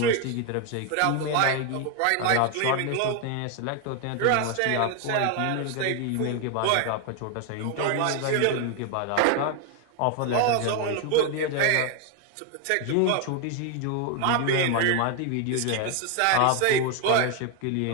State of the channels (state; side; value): different; both; correlation 0.01